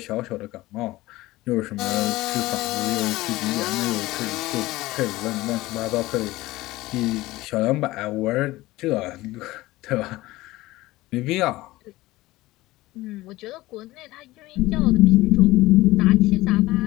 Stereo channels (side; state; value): right; quieter; 18.5 dB